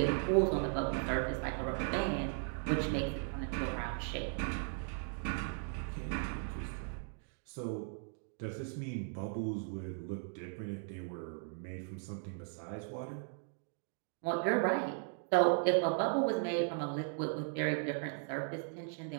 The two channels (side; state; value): left; silent; 53 dB below the other